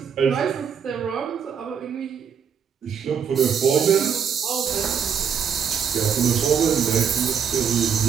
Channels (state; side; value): quieter; left; 7.3 dB